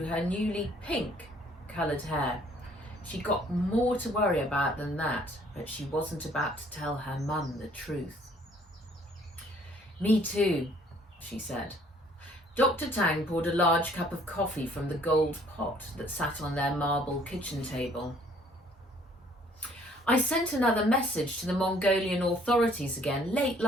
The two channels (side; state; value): both; normal; correlation 0.60